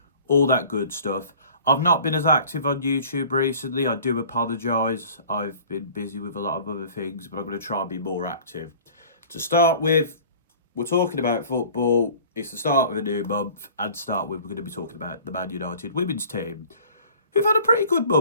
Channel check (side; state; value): both; inverted; correlation -0.47